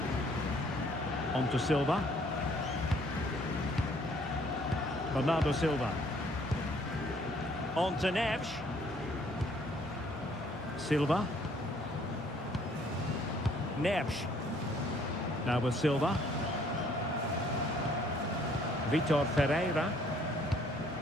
On to Silva. Bernardo Silva. On to Neves. Silva. Neves. Now with Silva. Vitor Ferreira.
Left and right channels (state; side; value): normal; both; correlation 0.62